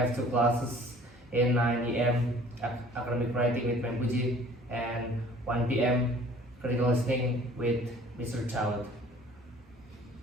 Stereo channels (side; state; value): both; normal; correlation 0.51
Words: two classes in 9 a.m. academic writing with Mempuji and 1 p.m. critical listening with Mr. Child.